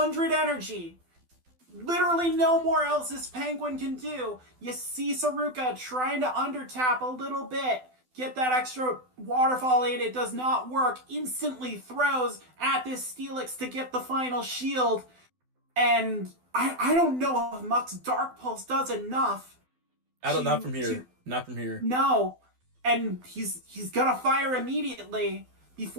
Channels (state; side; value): late; left; 12 ms